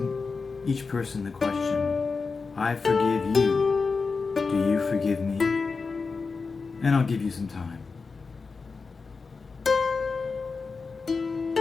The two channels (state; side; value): quieter; right; 4.6 dB